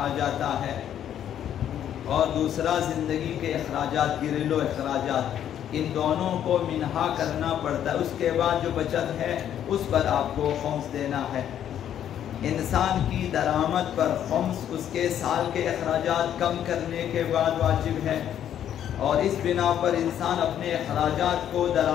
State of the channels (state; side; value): quieter; right; 10.2 dB